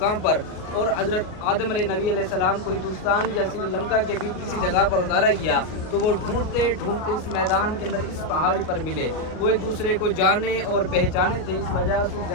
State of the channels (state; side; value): late; right; 38 ms